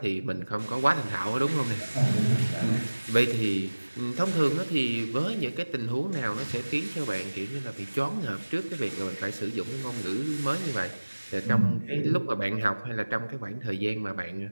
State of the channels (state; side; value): inverted; both; correlation -1.00